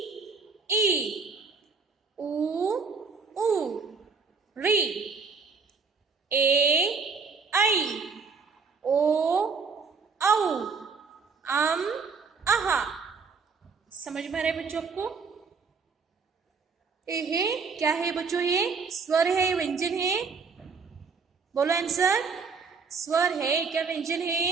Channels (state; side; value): quieter; left; 5.0 dB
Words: ई, उ ऊ, री, ए आई, ओ औ, आहा। समझ में आ रहा है बच्चों आपको? ये क्या है बच्चों? ये स्वर है, व्यंजन है? बोलो आंसर। स्वर है क्या व्यंजन